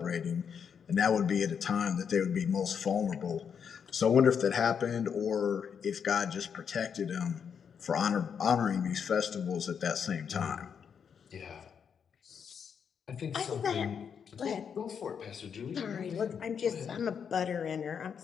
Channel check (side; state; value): right; quieter; 7.1 dB